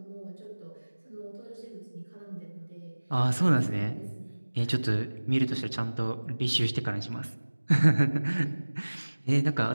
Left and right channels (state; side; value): inverted; both; correlation -1.00